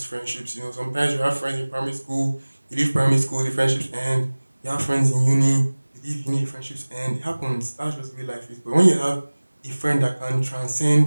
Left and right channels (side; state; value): both; inverted; correlation -1.00